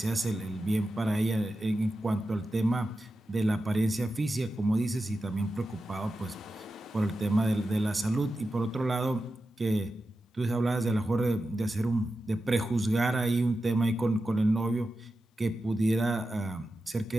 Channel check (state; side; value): normal; both; correlation 0.91